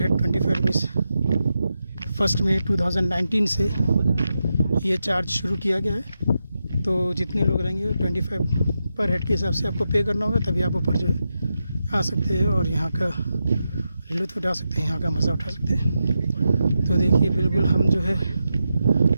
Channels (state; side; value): inverted; both; correlation -0.88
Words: 25 रुपीज़ 1 मई 2019 से ये चार्ज शुरू किया गया है। तो जितने लोग रहेंगे 25 पर हेड के हिसाब से आपको पे करना होगा, तभी आप ऊपर जो है आ सकते हैं और यहाँ का लुत्फ़ उठा सकते हैं, यहाँ का मज़ा उठा सकते हैं। तो देखिए बिल्कुल हम जो है